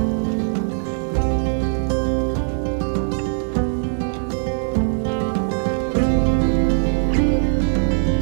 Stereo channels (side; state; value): left; silent; digital silence